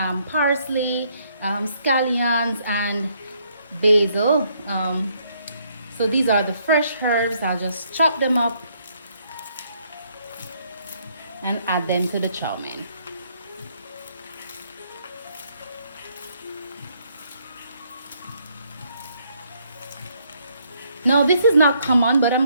parsley, scallions, and basil. So these are the fresh herbs. I'll just chop them up and add them to the chow mein. Now this is not common, but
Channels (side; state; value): both; inverted; correlation -0.70